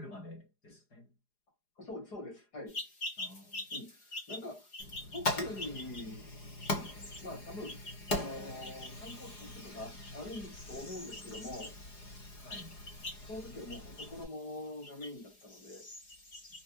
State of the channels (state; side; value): late; right; 4.9 ms